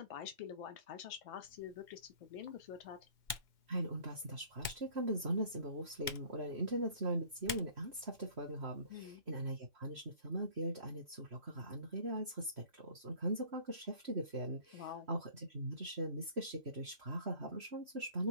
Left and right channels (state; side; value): late; left; 2.1 ms